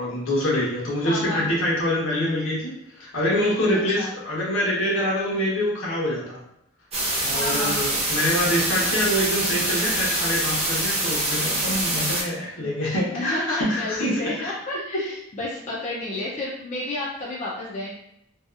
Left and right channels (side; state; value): both; normal; correlation 0.26